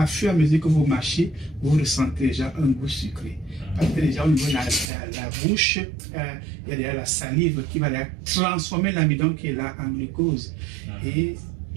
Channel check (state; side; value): drops out; left; at 4.9 s